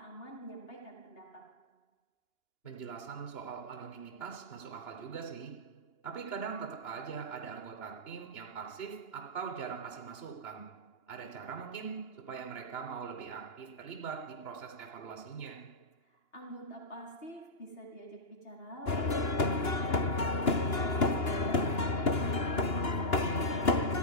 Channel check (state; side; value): late; right; 2.9 ms